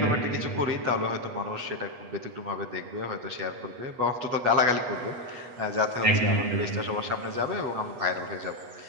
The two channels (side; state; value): left; late; 8.1 ms